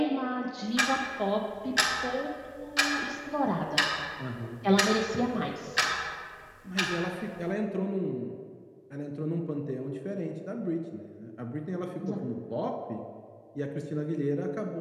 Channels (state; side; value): identical; both; correlation 1.00